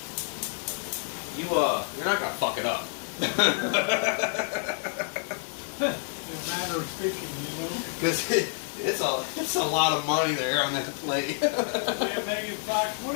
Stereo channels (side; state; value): right; silent; digital silence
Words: you're not gonna fuck it up. In a matter of speaking, you know. Because it's a lot of money there on that plate. Yeah, Megan Fox, what